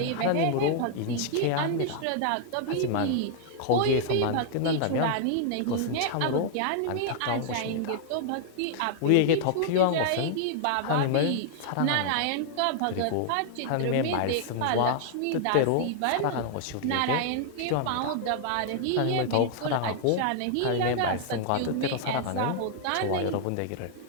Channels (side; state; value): both; different; correlation -0.01